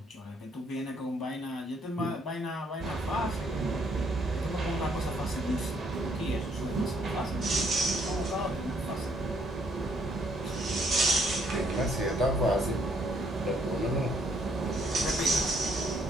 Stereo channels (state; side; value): normal; both; correlation 0.68